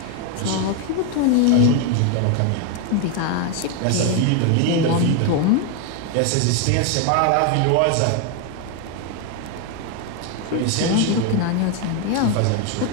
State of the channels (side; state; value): both; different; correlation 0.01